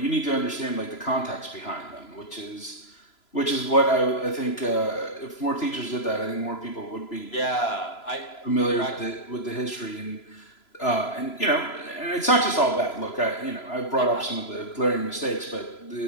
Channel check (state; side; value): late; right; 3.0 ms